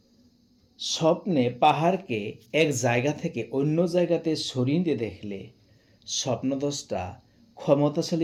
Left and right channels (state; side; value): identical; both; correlation 1.00